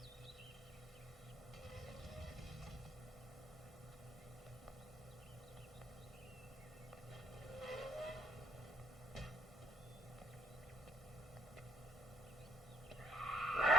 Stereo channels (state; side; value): normal; both; correlation 0.63